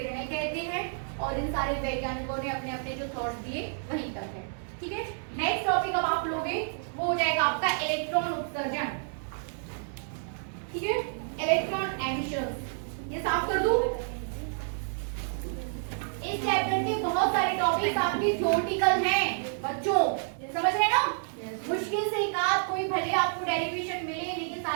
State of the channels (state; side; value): silent; left; digital silence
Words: कहते हैं। और इन सारे वैज्ञानिकों ने अपने अपने जो थॉट्स दिए वहीं तक है। ठीक है, नेक्स्ट टॉपिक अब आप लोगे वो हो जाएगा आपका इलेक्ट्रॉन उत्सर्जन। ठीक है, इलेक्ट्रॉन एमिशन। ये साफ कर दूं। इस चैप्टर के बहुत सारे टॉपिक्स आपके थ्योरेटिकल हैं बच्चों, समझ रहे हैं ना? मुश्किल से एक आध कोई भले आपको डेरिवेशन मिले, लेकिन